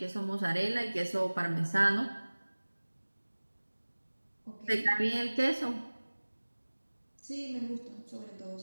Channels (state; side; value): inverted; both; correlation -1.00